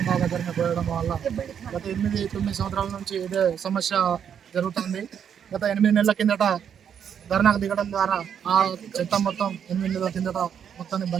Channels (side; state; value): left; quieter; 8.2 dB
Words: దగ్గరనే పోయడం వల్ల గత 8-9 సంవత్సరాల నుంచి ఇదే సమస్య జరుగుతుంది. గత 8 నెలల కిందట ధర్నాకు దిగడం ద్వారా ఆ చెత్త మొత్తం 8 నెలల కిందట మొత్తాన్ని